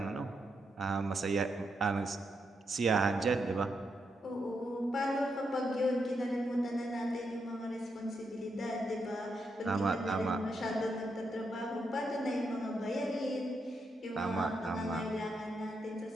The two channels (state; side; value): normal; both; correlation 0.82